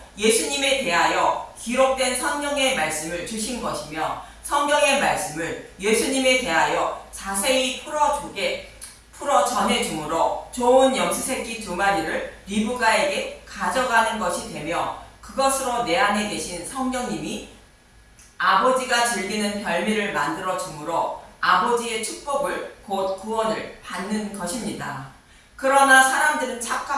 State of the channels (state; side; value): identical; both; correlation 1.00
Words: 예수님에 대하여 기록된 성경의 말씀을 주신 것이며, 성경의 말씀을 예수님에 대하여 자세히 풀어 전해주므로 좋은 염소 새끼 두 마리를 리브가에게 가져가는 것이 되며, 그것으로 내 안에 계신 성령님이 아버지가 즐기는 별미를 만들어 주므로 아버지의 축복을 곧 구원을 받는 것입니다. 그러나 사람들은